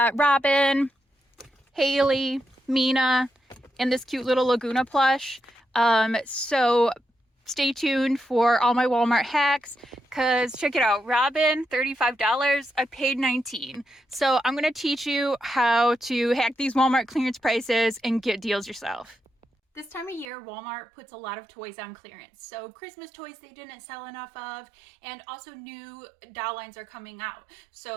Robin, Haley, Mina, and this cute little Laguna plush. So stay tuned for all my Walmart hacks, because check it out. Robin, $35. I paid $19. So I'm going to teach you how to hack these Walmart clearance prices and get deals yourself. This time of year, Walmart puts a lot of toys on clearance. So Christmas toys they didn't sell enough of, and also new doll lines are coming out.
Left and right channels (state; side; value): drops out; left; at 20.3 s